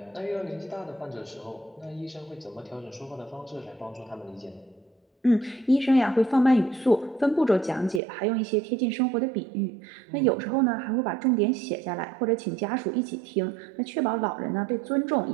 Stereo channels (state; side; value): drops out; left; at 8.0 s